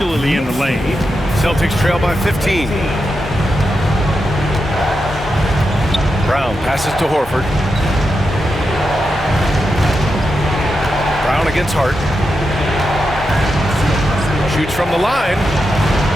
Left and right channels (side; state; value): both; normal; correlation 0.87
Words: in the lane. Celtics trail by 15. Brown passes to Horford. Brown against Hart. Shoots from the line.